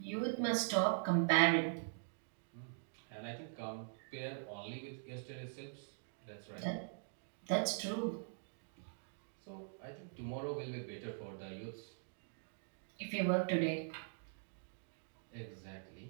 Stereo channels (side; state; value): left; silent; digital silence